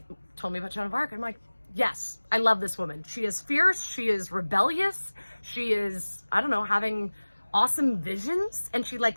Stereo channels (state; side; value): inverted; both; correlation -1.00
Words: told me about Joan of Arc. I'm like, yes, I love this woman. She is fierce. She is rebellious. She is, I don't know, having awesome visions. And she